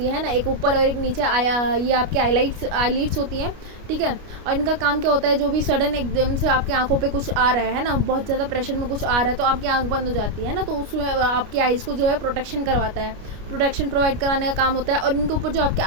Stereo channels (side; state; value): left; late; 29 ms